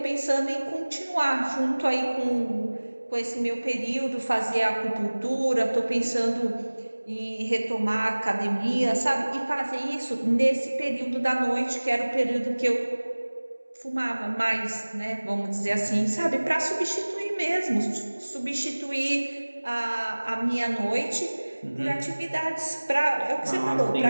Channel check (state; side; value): inverted; both; correlation -1.00